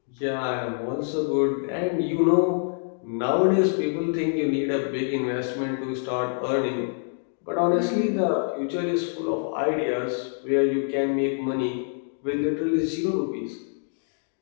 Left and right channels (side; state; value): right; silent; 61 dB below the other